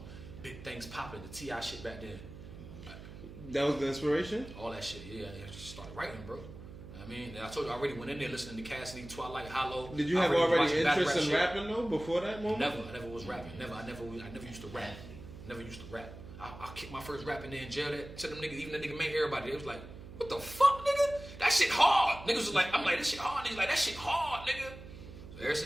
Big Things Poppin', the T.I. shit back then. That was the inspiration? All that shit, yeah. I just started writing, bro. I mean, I told you I already went in there listening to Cassidy, Twilight, Hollow. Did you have already interest in rapping though before that moment? Never. I never was rapping. I never used to rap. Never used to rap. I kicked my first rap in there in jail. That to them niggas, even the nigga made everybody. They was like, what the fuck, nigga? That shit hard. Niggas was like, I'm like, this shit hard. Niggas like, that shit hard, nigga. So ever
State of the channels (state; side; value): noise; right; hum, 14 dB below the sound